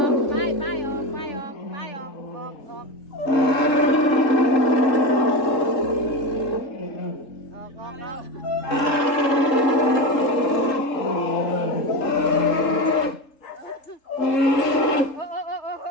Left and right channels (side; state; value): right; late; 3.7 ms